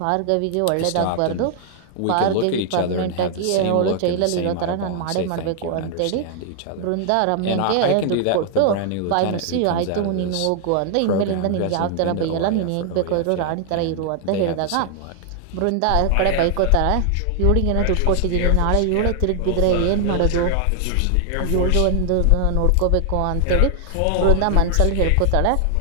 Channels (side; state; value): both; different; correlation 0.00